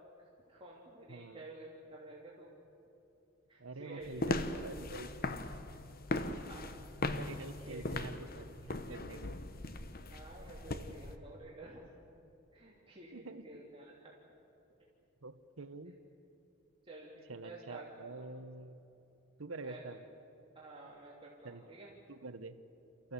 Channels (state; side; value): normal; both; correlation 0.32